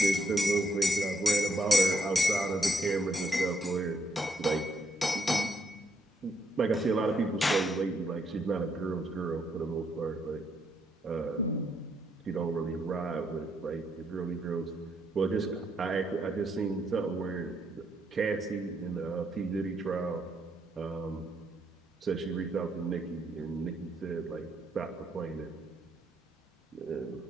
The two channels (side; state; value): both; normal; correlation 0.75